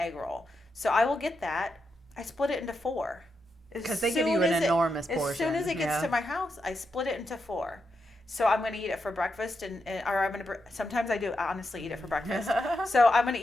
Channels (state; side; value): normal; both; correlation 0.85